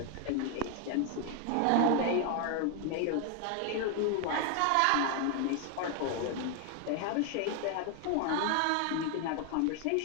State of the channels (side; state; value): both; different; correlation 0.01